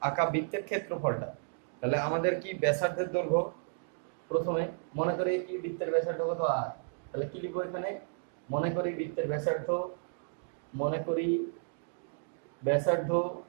আঁকা বৃত্তের ক্ষেত্রফলটা। তাহলে আমাদের কি ব্যাসার্ধের দৈর্ঘ্য, প্রথমে মনে করি কি বৃত্তের ব্যাসার্ধ কত আর, তাহলে কি লিখবো এখানে, মনে করি বৃত্তের ব্যাসার্ধ, মনে করি ব্যাসার্ধ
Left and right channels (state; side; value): silent; left; digital silence